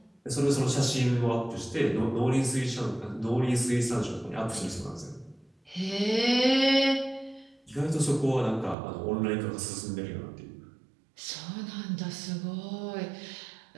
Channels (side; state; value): left; drops out; at 8.8 s